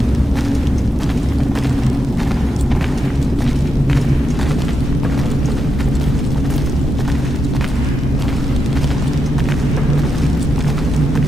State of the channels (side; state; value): both; normal; correlation 0.85